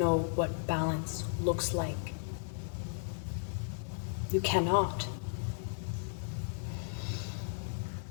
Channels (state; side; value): silent; right; digital silence